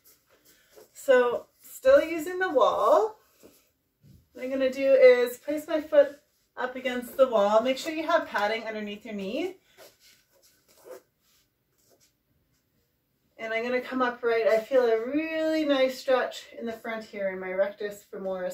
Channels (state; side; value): identical; both; correlation 1.00